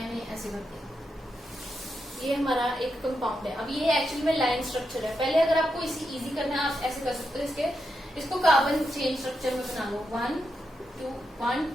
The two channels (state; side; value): normal; both; correlation 0.85